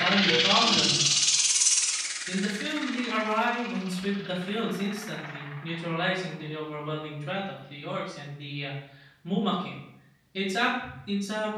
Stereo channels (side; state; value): both; identical; correlation 1.00